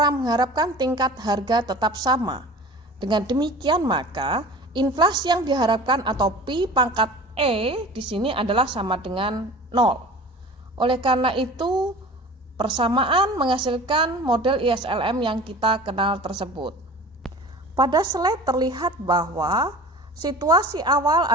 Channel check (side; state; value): both; normal; correlation 0.40